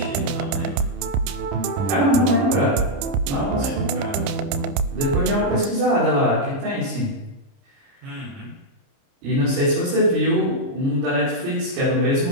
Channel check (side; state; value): left; late; 30 ms